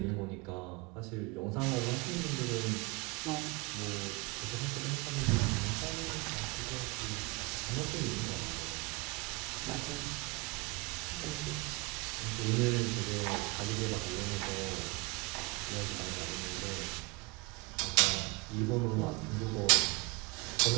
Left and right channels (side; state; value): left; quieter; 26.0 dB